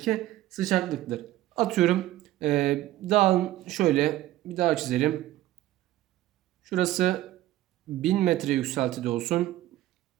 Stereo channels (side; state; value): left; quieter; 15.1 dB